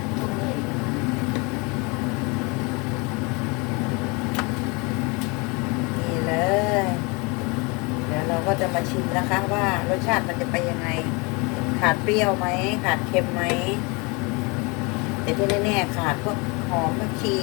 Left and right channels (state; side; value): quieter; right; 28.9 dB